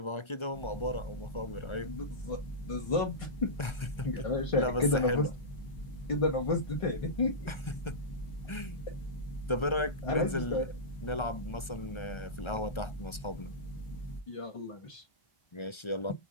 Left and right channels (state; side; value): late; right; 1.3 ms